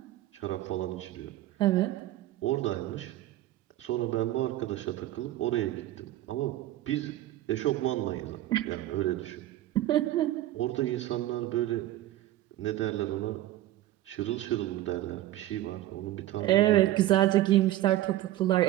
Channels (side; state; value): left; quieter; 14.5 dB